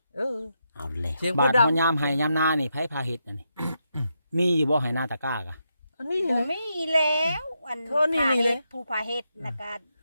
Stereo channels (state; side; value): inverted; both; correlation -0.83